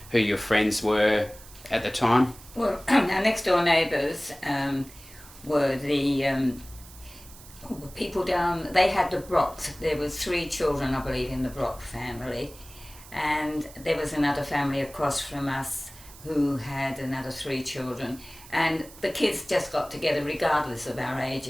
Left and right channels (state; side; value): noise; right; hiss, 20 dB below the sound